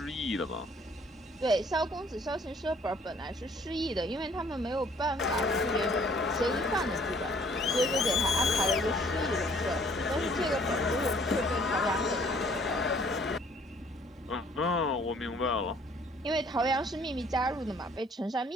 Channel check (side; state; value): both; normal; correlation 0.59